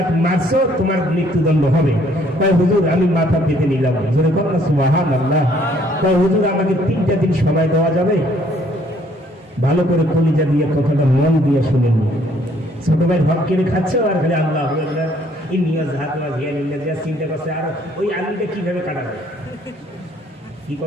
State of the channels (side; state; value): both; normal; correlation 0.63